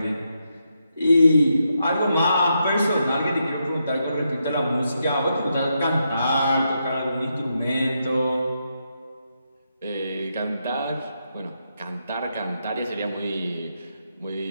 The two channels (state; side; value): inverted; both; correlation -0.82